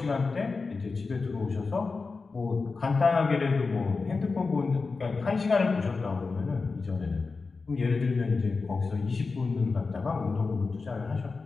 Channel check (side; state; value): right; quieter; 4.3 dB